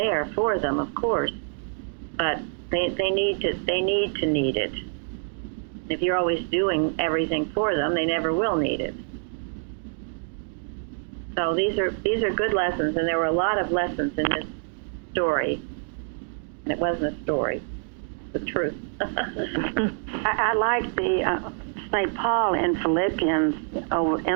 for them, of course, but they need it. If you're always doing everything for them, they never will need it. So these are good lessons, and there were a lot of lessons in this story. And it wasn't a story, it's the truth. I like the St. Paul in Philippians over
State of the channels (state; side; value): silent; left; 58 dB below the other